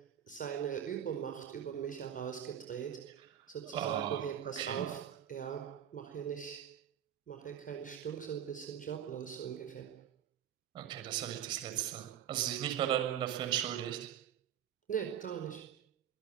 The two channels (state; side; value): quieter; left; 9.8 dB